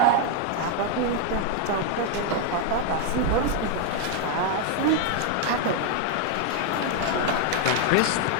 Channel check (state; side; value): different; both; correlation 0.00